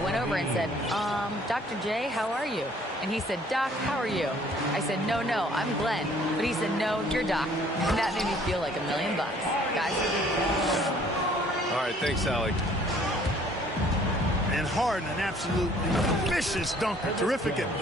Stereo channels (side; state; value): both; normal; correlation 0.58